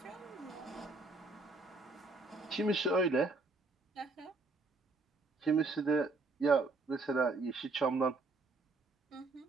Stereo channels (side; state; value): left; quieter; 3.5 dB